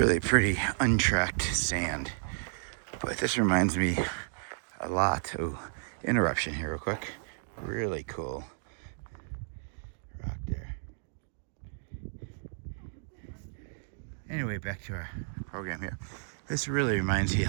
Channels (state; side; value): silent; left; digital silence